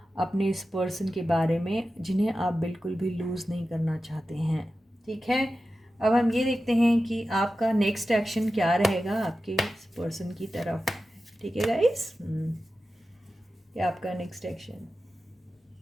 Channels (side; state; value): both; normal; correlation 0.93